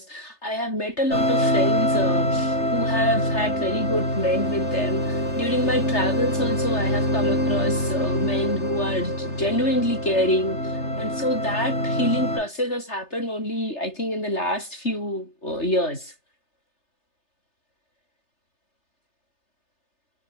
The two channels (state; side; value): late; right; 3.3 ms